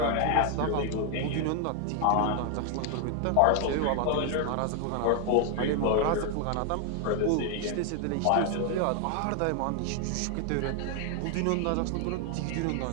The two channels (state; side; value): different; both; correlation 0.00